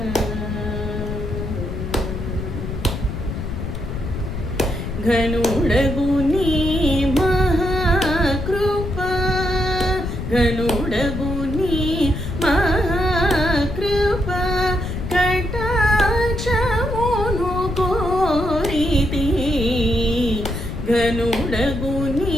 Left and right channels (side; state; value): left; noise; rumble, 5 dB below the sound